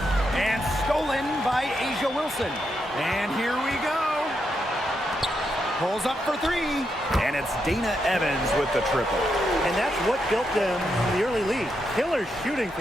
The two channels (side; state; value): both; normal; correlation 0.82